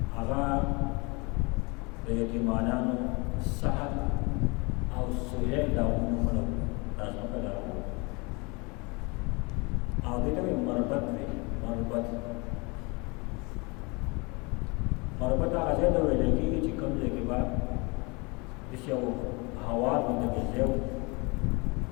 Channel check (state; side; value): quieter; right; 28.3 dB